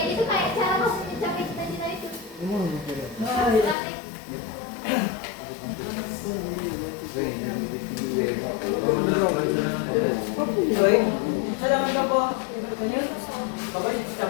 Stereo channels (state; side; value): drops out; right; at 3.8 s